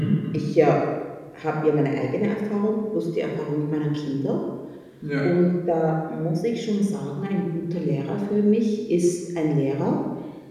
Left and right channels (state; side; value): identical; both; correlation 1.00